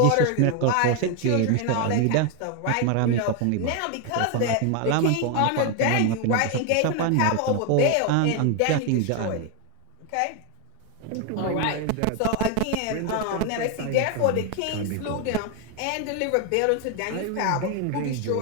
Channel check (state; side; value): different; both; correlation 0.01